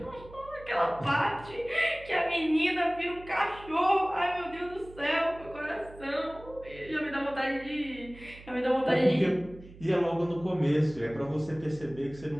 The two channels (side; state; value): right; noise; hum, 19 dB below the sound